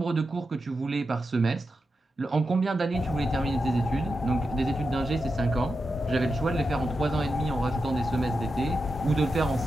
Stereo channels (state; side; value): normal; both; correlation 0.89